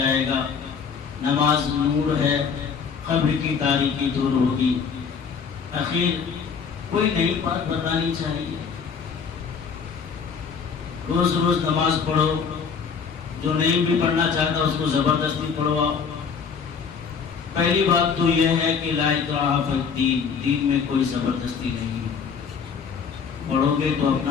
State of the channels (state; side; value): quieter; right; 6.2 dB